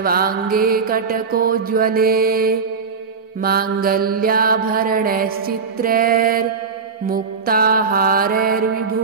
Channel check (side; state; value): left; quieter; 5.4 dB